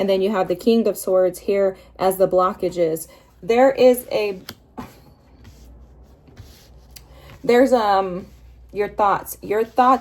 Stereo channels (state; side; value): identical; both; correlation 1.00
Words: then you have the King of Swords here as the blockages. There's your thoughts. Your